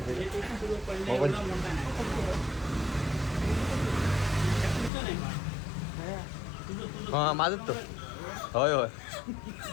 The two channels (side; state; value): right; drops out; at 4.9 s